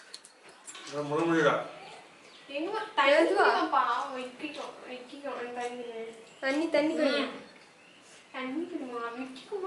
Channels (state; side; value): identical; both; correlation 1.00